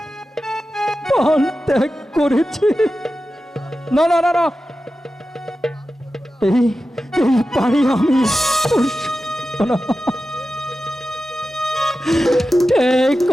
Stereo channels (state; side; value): normal; both; correlation 0.93